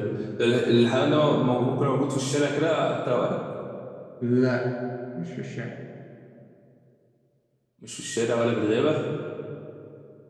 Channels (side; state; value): both; identical; correlation 1.00